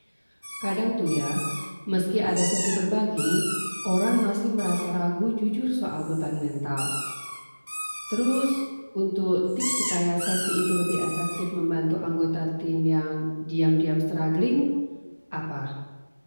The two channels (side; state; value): both; inverted; correlation -1.00